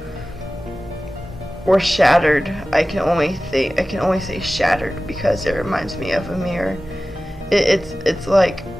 were shattered. I can only say shattered because it reminds me of a mirror. It's like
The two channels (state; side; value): normal; both; correlation 0.96